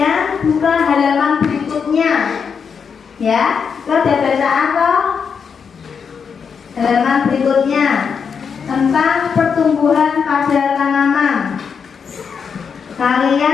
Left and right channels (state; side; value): quieter; right; 6.4 dB